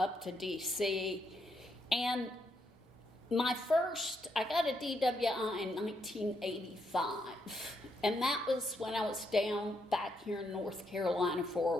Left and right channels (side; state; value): both; normal; correlation 0.78